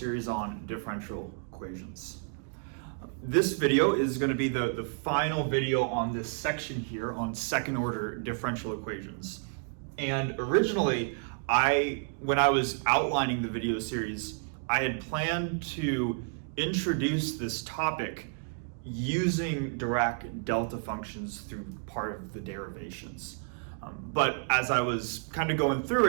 on differential equations. This video is going to be the final video on this section here on second order differential equations. And originally, when I was outlining the video series, I had planned to introduce this topic using Dirac delta functions through part of the derivations. But as I was kind of going through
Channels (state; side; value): silent; left; 57 dB below the other